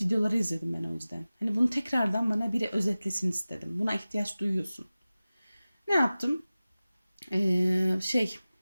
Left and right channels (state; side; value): inverted; both; correlation -0.97